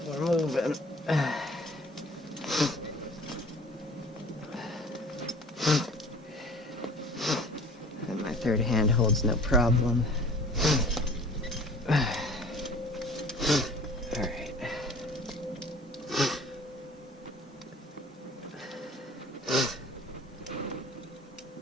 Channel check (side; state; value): both; normal; correlation 0.47